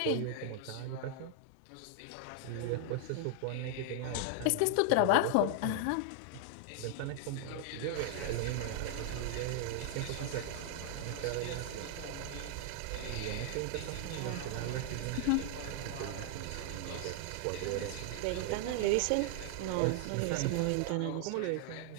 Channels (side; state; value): both; different; correlation 0.00